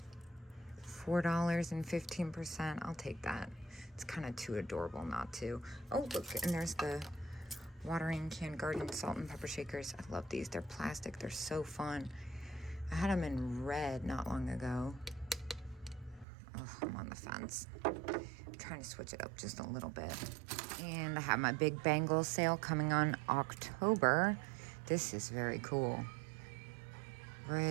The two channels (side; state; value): left; drops out; at 16.2 s